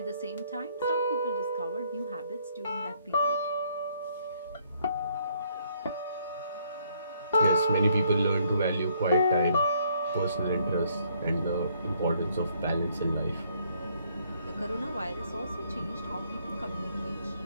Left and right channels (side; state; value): both; inverted; correlation -0.68